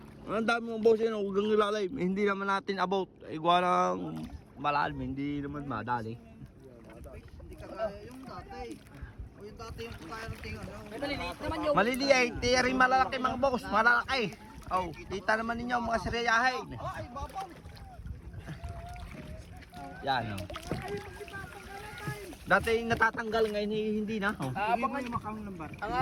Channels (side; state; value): both; identical; correlation 1.00